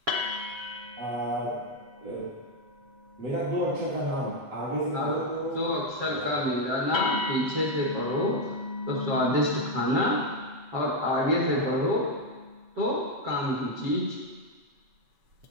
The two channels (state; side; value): late; left; 7.9 ms